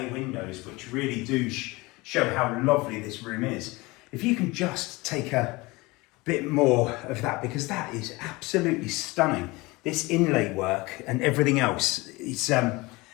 windows, which really do show how lovely this room is. If you can just take a bit more of that, because that is absolutely stunning. This inlay work and everything else, it's,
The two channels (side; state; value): right; quieter; 22.9 dB